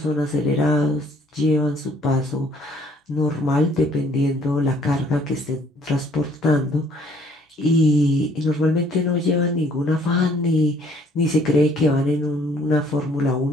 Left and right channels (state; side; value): normal; both; correlation 0.61